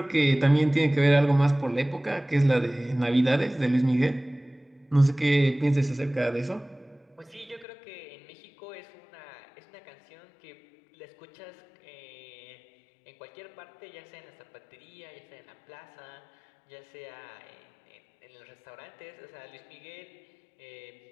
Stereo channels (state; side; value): drops out; right; at 7.7 s